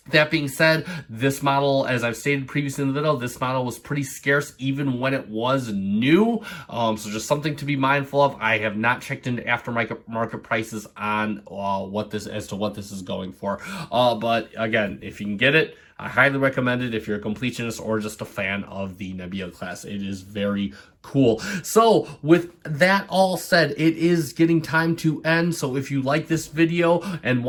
That being said, this model, as I've stated previously in the video, this model was pretty scarce even when it was new. So just something to be mindful of. I have not checked into aftermarket prices on what this is going for. But again, if you can get it, I highly recommend it if you're a completionist or just a fan of the Nebula class. It is very cool. So with that all said, it is getting time to end. So if you like this video and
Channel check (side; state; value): both; identical; correlation 1.00